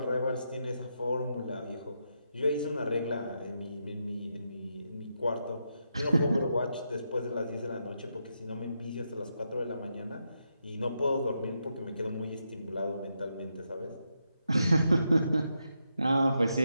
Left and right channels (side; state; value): both; inverted; correlation -0.83